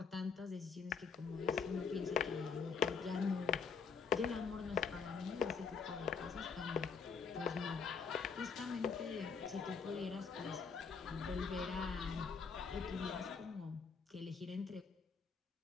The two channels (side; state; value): right; quieter; 5.6 dB